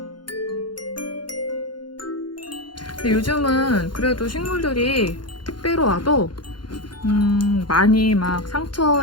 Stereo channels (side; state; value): right; late; 0.71 ms